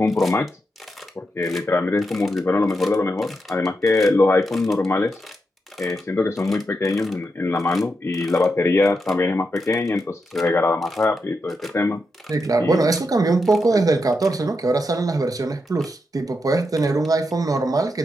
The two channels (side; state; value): both; normal; correlation 0.85